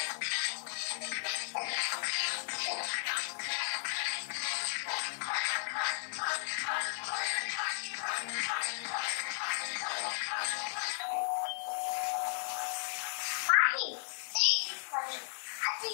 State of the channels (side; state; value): right; silent; digital silence